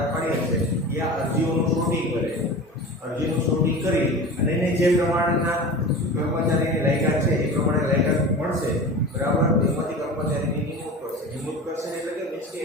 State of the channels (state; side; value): normal; both; correlation 0.33